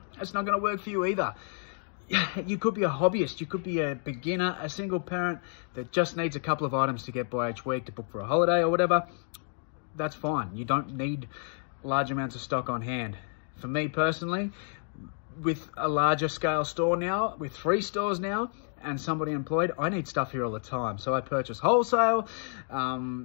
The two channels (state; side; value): silent; right; 55 dB below the other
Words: not going to work for you either. You could be a hobbyist, you could be a beginner, a single parent that just needs a couple of items to get by each week to book for a holiday or whatever. That's fine. You don't need large amounts of stock on hand. For me personally, with a larger scale store now, with 3 stores now and somebody employed, I need stuff here all the time. So I purchase wholesale,